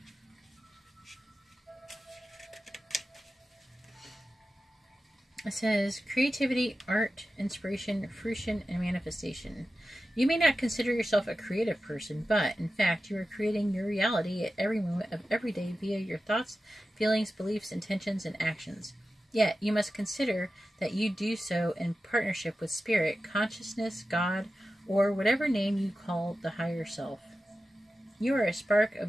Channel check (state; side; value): normal; both; correlation 0.93